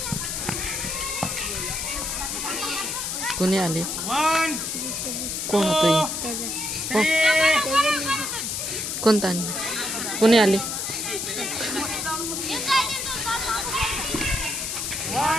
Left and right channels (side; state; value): left; noise; hiss, 3 dB below the sound